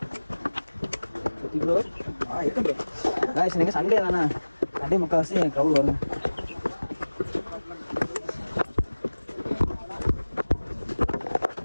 ப்ரோ. இருக்கு ப்ரோ. காய்ஸ் நீங்கள் சண்டே தானே, சண்டே முக்கால்வாசி க்ரௌட் வருங்க.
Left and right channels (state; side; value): inverted; both; correlation -1.00